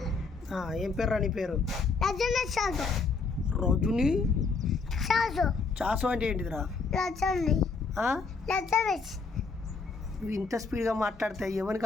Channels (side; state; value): right; quieter; 4.5 dB